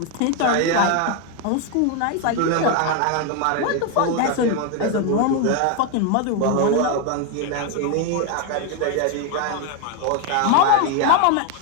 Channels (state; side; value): different; both; correlation 0.01